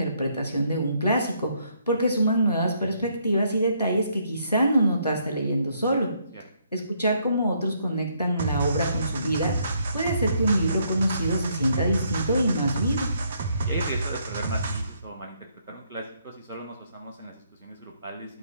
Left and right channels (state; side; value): inverted; both; correlation -0.70